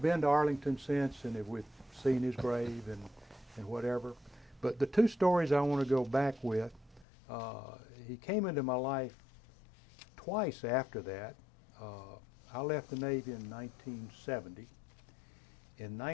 been to Arlington since, and we've seen his grave and whatever. But the 2 stories I want to go back with, he came into my life twice after that. I left the Navy in 1970. In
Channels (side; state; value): right; drops out; at 7.1 s